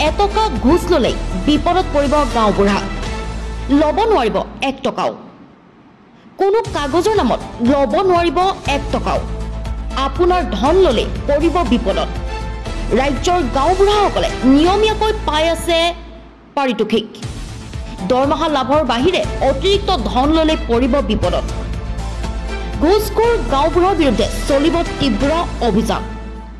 এটকা ঘুচ ল'লেই বিপদত পৰিব গাঁওবুঢ়া, ল'ব নোৱাৰিব 1 টকাও। কোনো কাগজৰ নামত ল'ব নোৱাৰিব 1 টকাও। আপোনাৰ ধন ল'লে পৰিব বিপদত। ৰাজ্যৰ গাঁওবুঢ়াসকলে নিয়মীয়াকৈ পাই আছে পাৰিতোষিক। দৰমহা লাভৰ বাহিৰে অতিৰিক্ত ধন ল'লে পৰিব বিপদত। ঘুচখোৰ গাঁওবুঢ়াৰ বিৰুদ্ধে চলিব তীব্ৰ অভিযান।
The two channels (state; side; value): identical; both; correlation 1.00